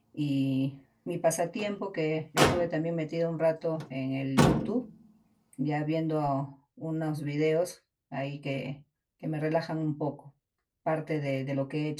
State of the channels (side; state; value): both; identical; correlation 1.00